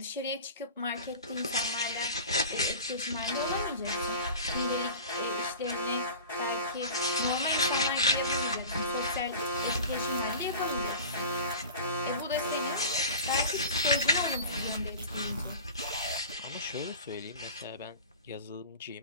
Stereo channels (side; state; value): both; inverted; correlation -0.36